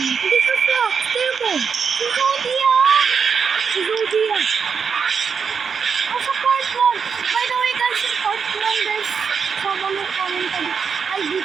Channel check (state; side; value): quieter; left; 6.2 dB